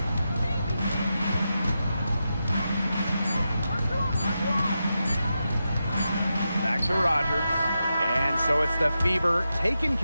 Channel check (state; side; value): inverted; both; correlation -0.89